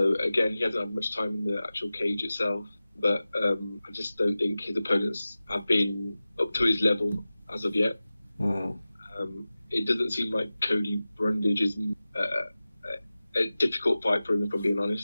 again, he hasn't had much time in the actual cage itself, but I just don't think his opponents have been up to his level as of yet. It doesn't seem like Cody Brundage is a difficult fight for him, if I'm being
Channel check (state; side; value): inverted; both; correlation -0.96